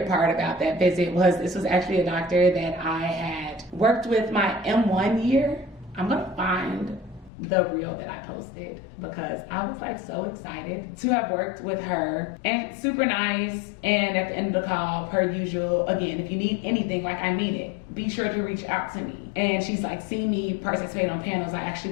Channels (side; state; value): right; drops out; at 7.3 s